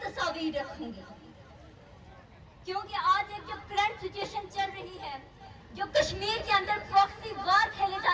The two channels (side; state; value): both; identical; correlation 1.00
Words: رکھوں گی، کیونکہ آج ایک جو کرنٹ سچویشن چل رہی ہے، جو کشمیر کے اندر پراکسی وار کھیلے